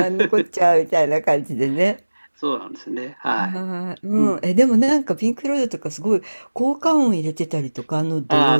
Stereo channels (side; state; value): both; inverted; correlation -1.00